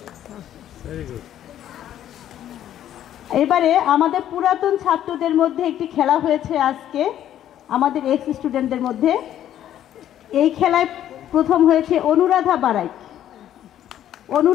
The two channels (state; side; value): quieter; right; 11.3 dB